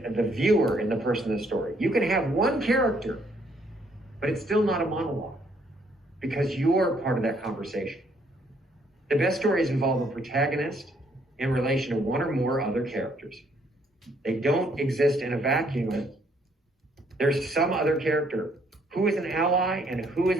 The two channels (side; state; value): both; normal; correlation 0.68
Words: viewer and the person in the story. You can have one character, but it's still not a monologue because you're part of that conversation. The best stories involve a protagonist in relation to one or more other characters. They don't exist in a vacuum. There's some other character who is an ally and who is